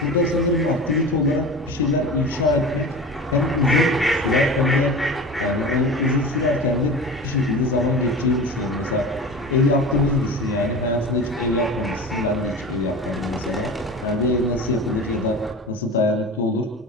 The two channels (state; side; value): normal; both; correlation 0.32